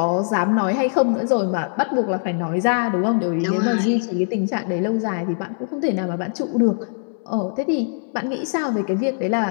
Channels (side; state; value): right; silent; digital silence